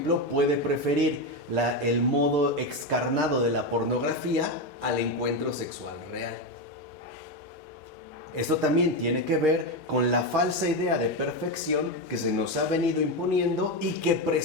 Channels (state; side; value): normal; both; correlation 0.11